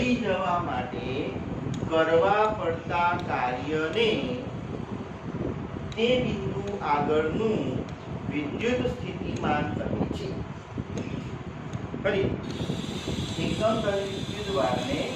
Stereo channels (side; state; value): both; identical; correlation 1.00